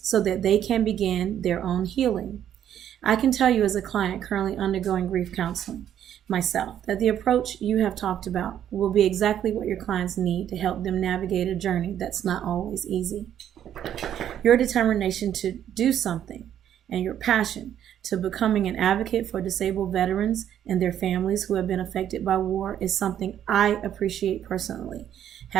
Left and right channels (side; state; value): left; quieter; 10.3 dB